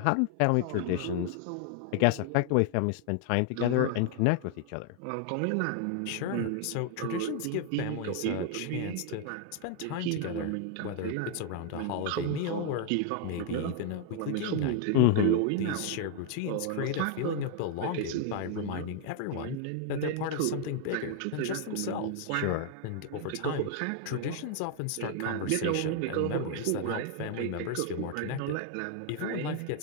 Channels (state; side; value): different; both; correlation 0.00